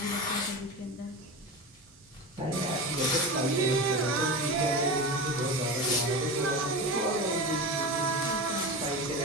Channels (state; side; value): normal; both; correlation 0.25